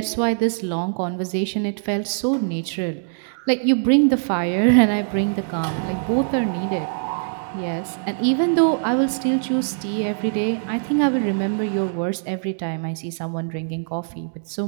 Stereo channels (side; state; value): left; silent; digital silence